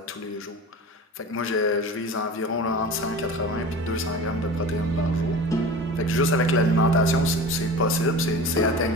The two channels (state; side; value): normal; both; correlation 0.35